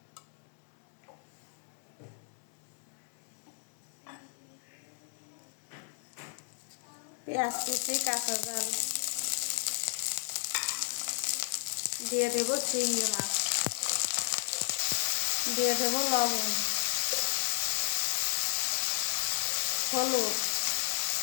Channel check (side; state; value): right; silent; digital silence